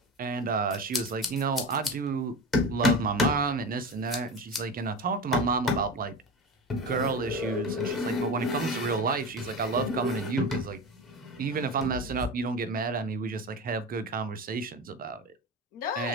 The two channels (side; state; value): both; normal; correlation 0.26